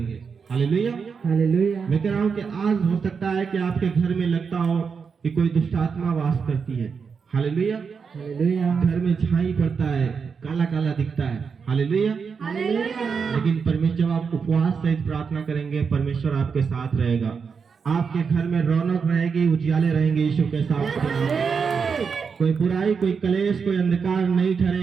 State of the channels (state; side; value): quieter; left; 5.8 dB